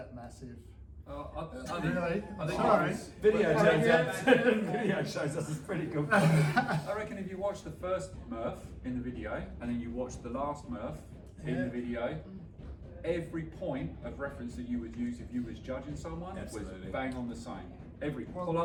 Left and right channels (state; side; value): identical; both; correlation 1.00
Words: massive. I think Sorry. Video shows us it's pretty good. I reckon if you watch the first MURPH in the video, and then you watch the last MURPH in the video, every point of reference that you would use if you was judging someone was bang on the same. Every